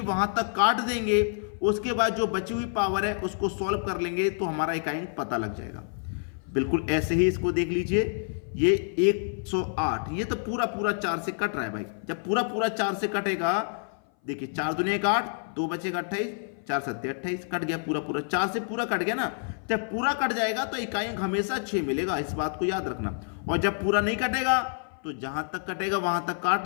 वहां तक काट देंगे, उसके बाद जो बची हुई पावर है उसको सॉल्व कर लेंगे तो हमारा इकाई अंक पता लग जाएगा। बिल्कुल ऐसे ही इसको देख लीजिए, ये 108, ये तो पूरा पूरा 4 से कट रहा है भाई। जब पूरा पूरा 4 से कटेगा, देखिए 4 दूनी 8, 2 बचेगा 28, 4 सत्ते 28, कट गया पूरा पूरा, 4 से पूरा कट गया ना। जब पूरा कट जाएगा तो इकाई अंक हमेशा 6 मिलेगा, इस बात को याद रखना। और जब पूरा नहीं कटेगा तो जहां तक कटेगा वहां तक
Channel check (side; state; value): right; silent; 57 dB below the other